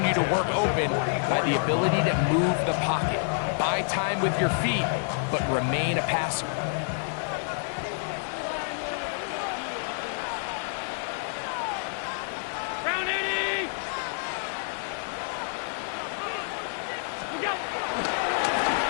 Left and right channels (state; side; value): silent; right; 59 dB below the other